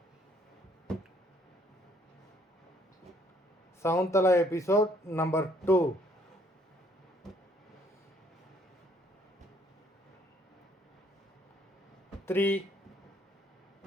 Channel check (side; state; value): both; normal; correlation 0.64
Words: Shakuntala episode number 2. Three,